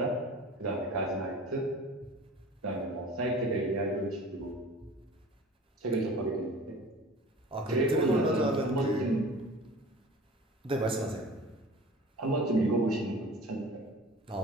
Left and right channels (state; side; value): normal; both; correlation 0.41